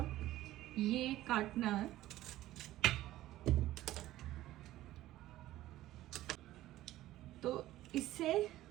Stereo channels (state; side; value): quieter; left; 15.2 dB